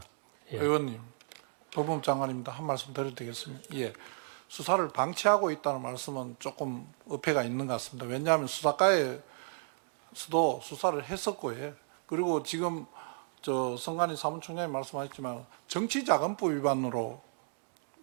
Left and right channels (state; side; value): silent; left; 56 dB below the other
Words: 예. 의원님, 법무부 장관입니다. 한 말씀 드려도 되겠습니까? 예. 수사를 방치하고 있다는 말씀은 조금 어폐가 있는 것 같습니다. 왜냐하면 수사과에서도 수사를 했었고요. 그리고 지금 성관희 사무총장이 말씀하셨지만 정치자금법 위반으로